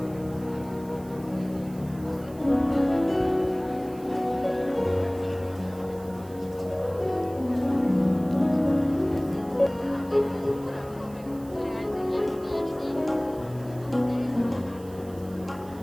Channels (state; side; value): noise; right; hiss, 24 dB below the sound